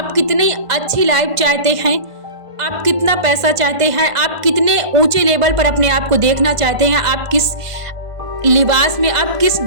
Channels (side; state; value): left; late; 1.5 ms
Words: कितनी अच्छी लाइफ चाहते हैं, आप कितना पैसा चाहते हैं, आप कितने ऊंचे लेवल पर अपने आप को देखना चाहते हैं, आप किस लिबास में, आप किस